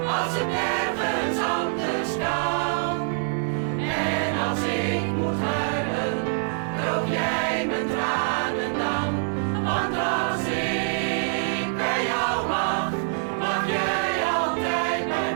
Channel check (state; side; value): silent; left; digital silence